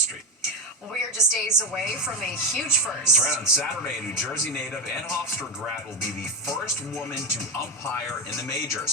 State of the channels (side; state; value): both; normal; correlation 0.13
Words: Well, we are just days away from a huge first. That's right. On Saturday, a New Jersey native and Hofstra grad will be the first woman to umpire in the